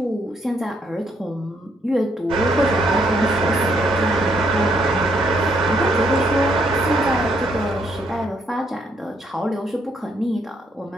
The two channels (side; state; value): both; normal; correlation 0.72